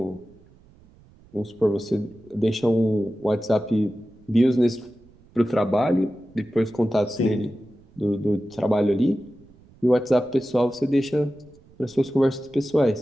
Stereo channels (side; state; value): right; noise; rumble, 27 dB below the sound